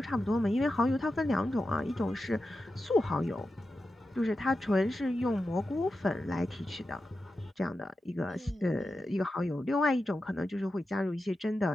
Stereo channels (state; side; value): normal; both; correlation 0.91